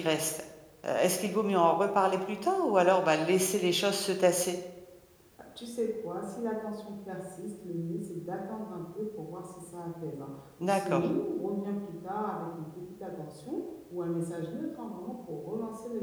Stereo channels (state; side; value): identical; both; correlation 1.00